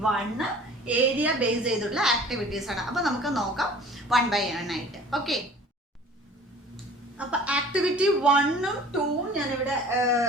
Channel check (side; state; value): both; normal; correlation 0.47